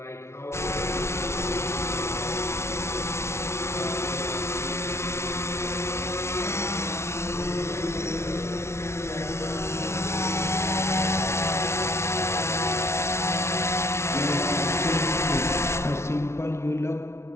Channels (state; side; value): late; right; 0.13 ms